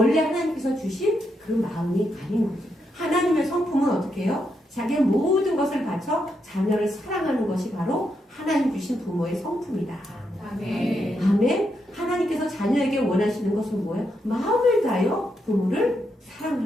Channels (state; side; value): normal; both; correlation 0.81